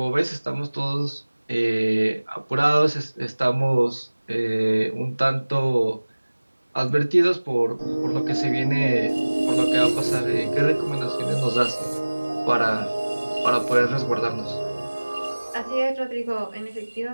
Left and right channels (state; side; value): inverted; both; correlation -1.00